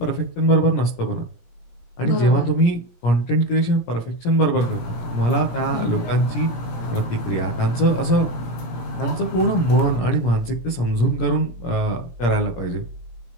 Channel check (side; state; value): right; late; 17 ms